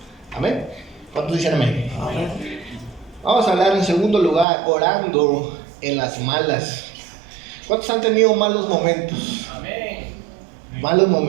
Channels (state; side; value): drops out; left; at 4.5 s